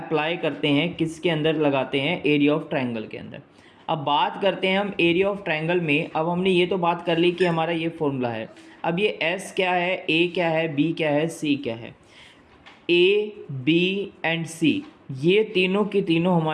करते हैं, किसके अंदर लगाते हैं, एरिया ऑफ ट्रायंगल के अंदर। अब बात करते हैं हम एरिया ऑफ ट्रायंगल में। अब हमने ये तो बात कर ली कि हमारा ये फॉर्मूला है। अब ये एस क्या है, ए क्या है, बी क्या है, सी क्या है। ए बी एंड सी ये तीनों की तीनों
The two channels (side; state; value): both; identical; correlation 1.00